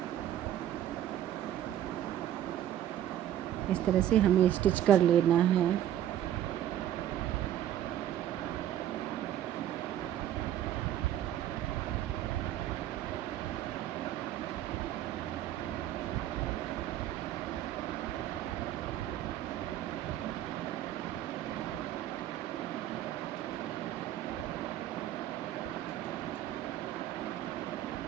इस तरह से हमें स्टिच कर लेना है।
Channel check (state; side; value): quieter; left; 11.8 dB